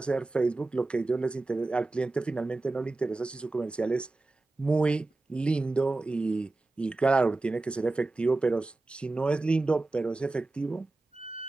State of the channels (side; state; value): left; quieter; 3.2 dB